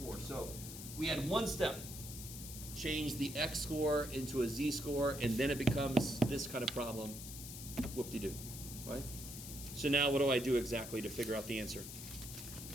So we had one step, change the X score into a Z score, and then it becomes this kind of problem. Whoop-de-doo, right? So now what do I do exactly to figure out the answer?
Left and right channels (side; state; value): left; noise; hiss, 10 dB below the sound